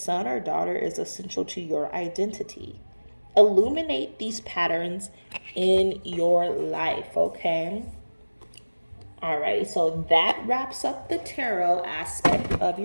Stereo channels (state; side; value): inverted; both; correlation -1.00